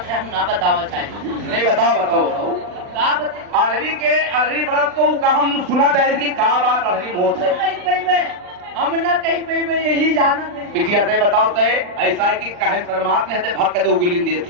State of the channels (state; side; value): late; left; 39 ms